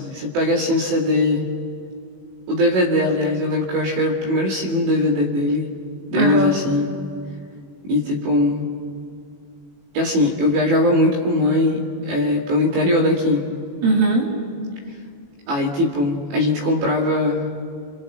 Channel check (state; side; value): late; left; 21 ms